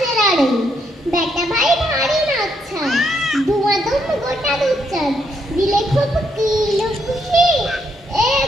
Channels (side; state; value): both; normal; correlation 0.76